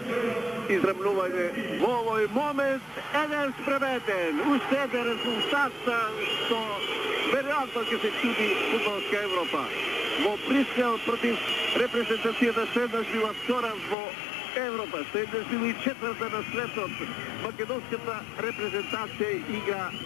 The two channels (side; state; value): right; drops out; at 14.0 s